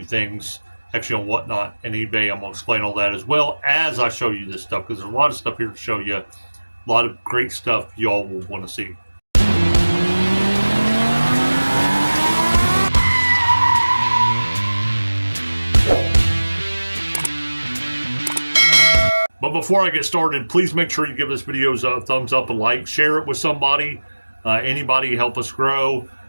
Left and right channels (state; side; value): inverted; both; correlation -1.00